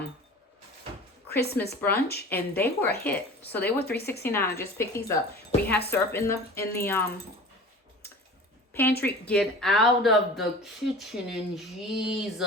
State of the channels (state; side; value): normal; both; correlation 0.39